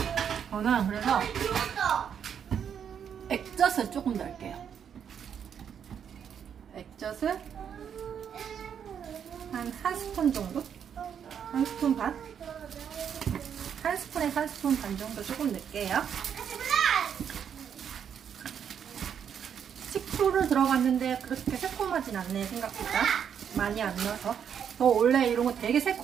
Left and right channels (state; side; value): quieter; left; 8.1 dB